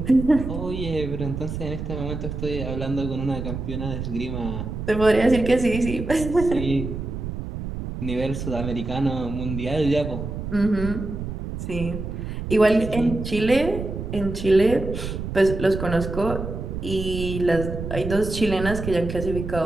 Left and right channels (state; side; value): noise; right; rumble, 6 dB below the sound